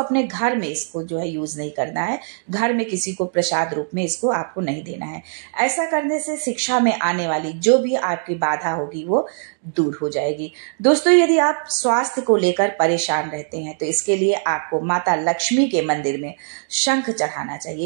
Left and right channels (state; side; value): silent; left; 65 dB below the other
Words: घर में इसको जो है यूज नहीं करना है, घर में किसी को प्रसाद रूप में इसको आपको नहीं देना है। ऐसा करने से शिक्षा में आने वाली जो भी आपकी बाधा होगी वो दूर हो जाएगी। दोस्तों, यदि आप स्वास्थ्य को लेकर परेशान रहते हैं तो इसके लिए आपको माता लक्ष्मी के मंदिर में शंख चढ़ाना